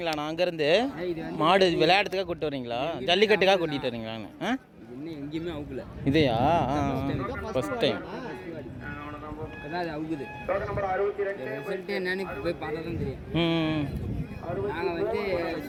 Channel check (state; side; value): identical; both; correlation 1.00